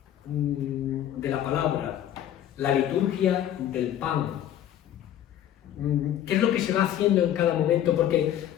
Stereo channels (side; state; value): right; quieter; 11.2 dB